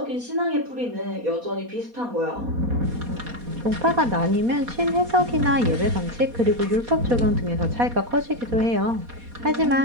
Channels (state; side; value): late; left; 4.2 ms